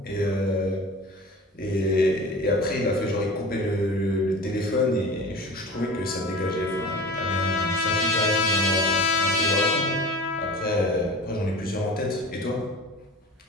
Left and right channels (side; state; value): both; normal; correlation 0.37